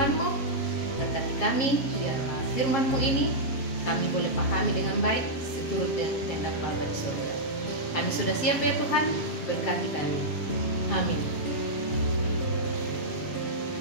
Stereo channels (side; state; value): right; late; 7.5 ms